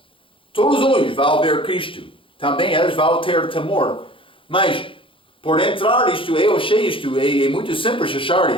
Todos os olhos vão ver Cristo. Também eles vão ter temor. Mas, por entrar isto, eu achei isto, é muito simples achar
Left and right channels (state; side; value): late; right; 0.25 ms